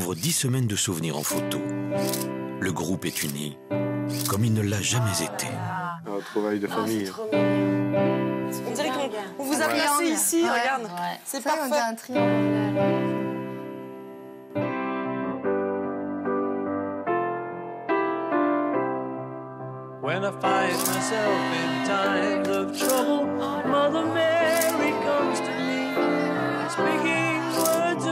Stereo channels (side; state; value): both; identical; correlation 1.00